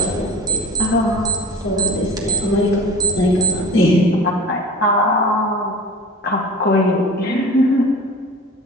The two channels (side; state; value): both; normal; correlation 0.29